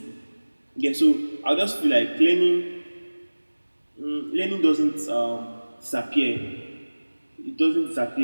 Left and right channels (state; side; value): inverted; both; correlation -1.00